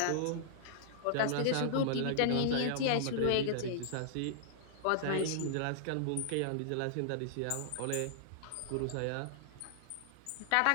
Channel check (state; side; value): different; both; correlation -0.01